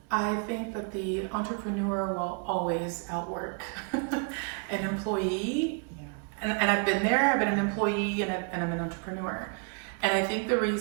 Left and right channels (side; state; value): left; quieter; 37.6 dB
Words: I think that the entrepreneur will always outwork an employee. And I've been there, I've been an employee and I'm an entrepreneur. And I think the